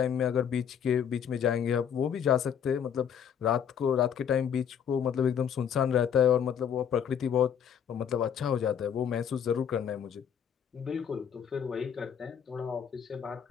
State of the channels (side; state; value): right; quieter; 8.2 dB